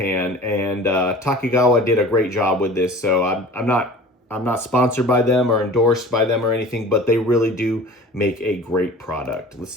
And Takigawa did a great job with this. So I'm not sponsored by them or endorsed by them or anything, but they really do make a great product. Let's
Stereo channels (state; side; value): normal; both; correlation 0.42